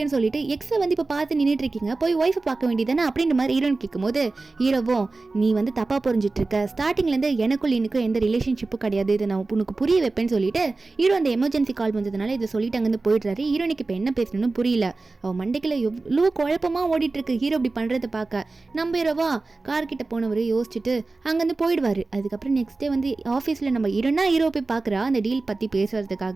சொல்லிட்டு எக்ஸை வந்து இப்போ பார்த்து நின்றுட்டு இருக்கீங்க, போய் ஒய்ஃபை பார்க்க வேண்டியதானே அப்படின்ற மாதிரி ஹீரோன் கேட்கும்போது ஹீரோவும் நீ வந்து தப்பாக புரிஞ்சிட்டு இருக்க, ஸ்டார்டிங்லேருந்து எனக்குள் இன்னும் எந்த ரிலேஷன்ஷிப்பும் கிடையாது, இதை நான் உனக்கு புரிய வைப்பேன்னு சொல்லிட்டு ஹீரோ அந்த எமர்ஜென்சி கால் வந்ததுனால இதை சொல்லிட்டு அங்கேருந்து போயிடுறாரு. ஹீரோனுக்கு இப்போ என்ன பேசணும்னு புரியல, அவன் மண்டைக்குள்ள எவ்வளோ குழப்பமாக ஓடிட்டு இருக்கு ஹீரோ இப்படி பண்ணுறதை பார்க்க. நம்ம ஹீரோவா கார்கிட்ட போனவர் யோசிச்சுட்டு அங்கேருந்து போயிடுவார். அதுக்கப்புறம் நெக்ஸ்ட் டே வந்து ஆஃபீஸில் நம்ம ஹீரோ போய் பார்க்குறா அந்த டீல் பற்றி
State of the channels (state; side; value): quieter; left; 3.5 dB